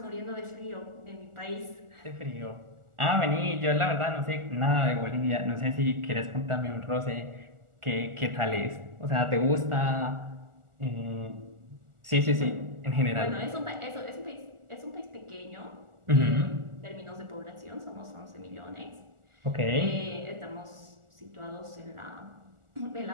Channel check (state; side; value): late; left; 1.4 ms